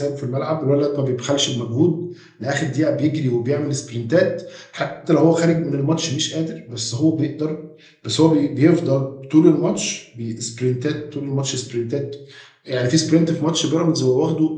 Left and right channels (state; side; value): identical; both; correlation 1.00